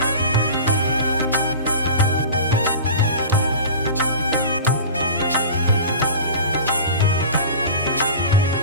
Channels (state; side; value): inverted; both; correlation -0.34